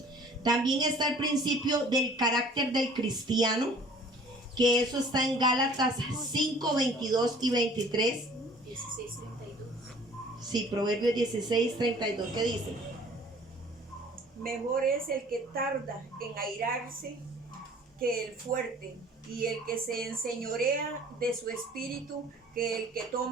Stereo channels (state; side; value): normal; both; correlation 0.51